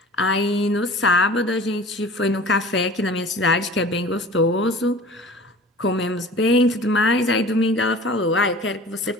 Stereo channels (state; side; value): normal; both; correlation 0.42